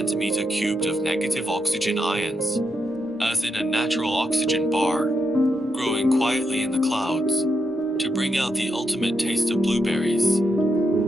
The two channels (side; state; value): both; normal; correlation 0.83